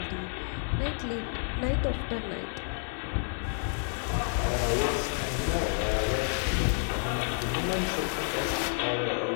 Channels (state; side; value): silent; right; 58 dB below the other